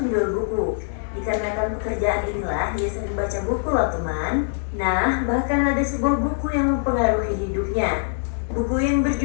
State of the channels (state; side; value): silent; right; digital silence